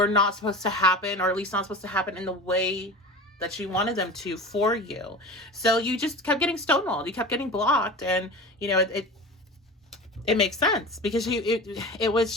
not supposed to happen, or at least not supposed to happen in the way that you wanted them to for you. So you just kept getting stonewalled. You kept getting blocked, and you know it makes sense, because it was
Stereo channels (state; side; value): normal; both; correlation 0.33